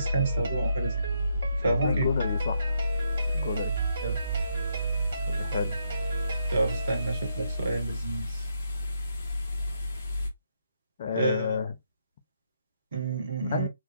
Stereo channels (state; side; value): inverted; both; correlation -0.77